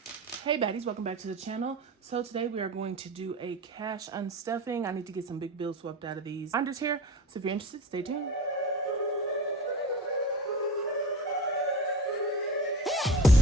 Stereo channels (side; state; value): both; normal; correlation 0.34